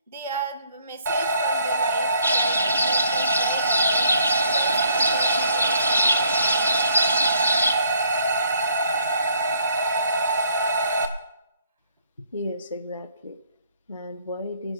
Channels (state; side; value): inverted; both; correlation -0.65